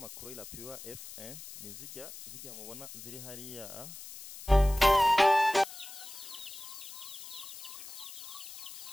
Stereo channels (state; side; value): noise; left; hiss, 13 dB below the sound